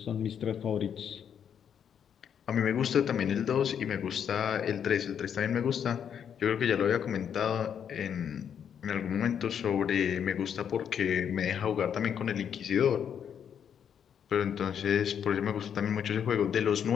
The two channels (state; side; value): quieter; right; 8.3 dB